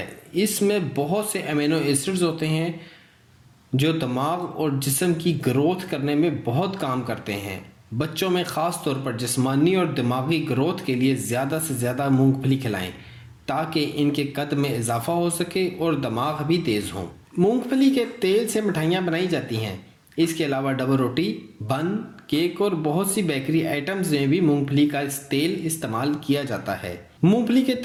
اس میں بہت سے امینو ایسڈز ہوتے ہیں جو دماغ اور جسم کی گروتھ کرنے میں بہت کام کرتے ہیں۔ بچوں میں خاص طور پر جسمانی اور دماغی گروتھ کے لیے زیادہ سے زیادہ مونگ پھلی کھلائیں تاکہ ان کے قد میں اضافہ ہو سکے اور دماغ بھی تیز ہوں۔ مونگ پھلی کے تیل سے مٹھائیاں بنائی جاتی ہیں۔ اس کے علاوہ ڈبل روٹی، بن، کیک اور بہت سی بیکری آئٹمز میں بھی مونگ پھلی کا تیل استعمال کیا جاتا ہے۔ مونگ پھلی کے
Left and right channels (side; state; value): both; identical; correlation 1.00